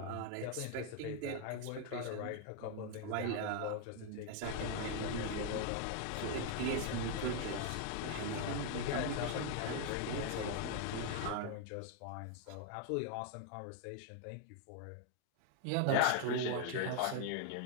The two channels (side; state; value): both; different; correlation 0.00